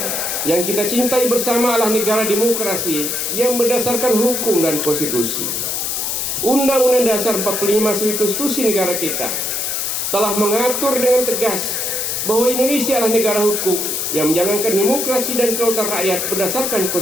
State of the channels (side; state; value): left; noise; hiss, 1 dB below the sound